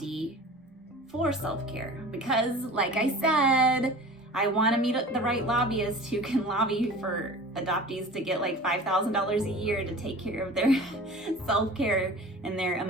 for self-care, because like I said, I want to meet the right lobbyist who can lobby for adoptees to get like $5,000 a year to take care of their self-care and their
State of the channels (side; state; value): both; normal; correlation 0.39